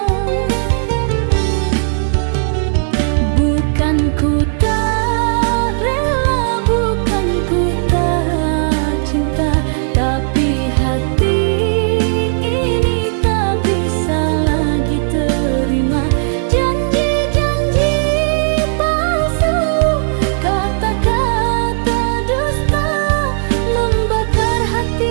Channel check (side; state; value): left; silent; digital silence